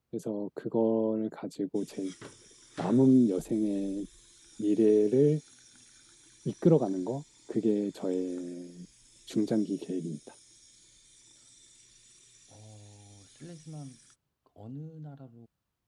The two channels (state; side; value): identical; both; correlation 1.00